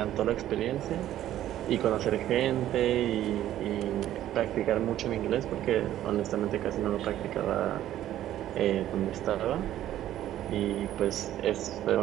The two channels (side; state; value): left; quieter; 12.6 dB